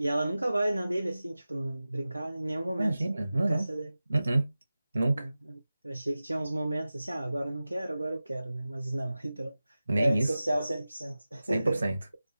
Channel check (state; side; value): inverted; both; correlation -0.95